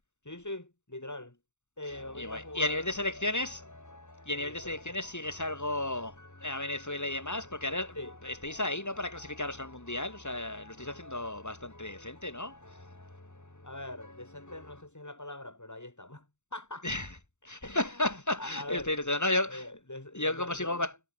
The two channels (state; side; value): late; right; 0.84 ms